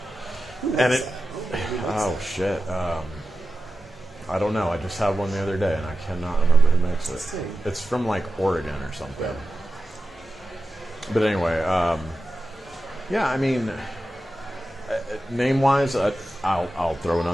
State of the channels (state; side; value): normal; both; correlation 0.92